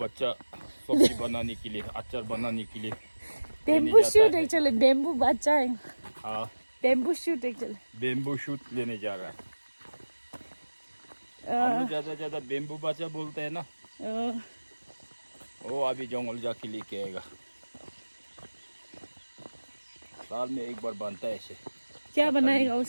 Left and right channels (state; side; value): inverted; both; correlation -1.00